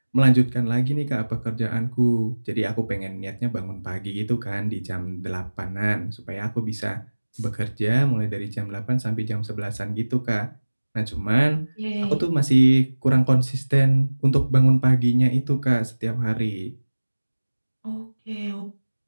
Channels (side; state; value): both; inverted; correlation -1.00